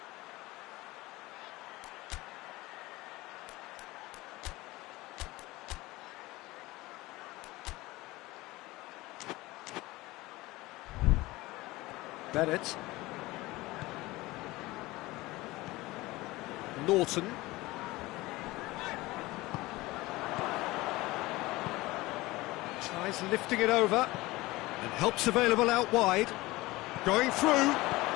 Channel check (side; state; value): right; quieter; 20.0 dB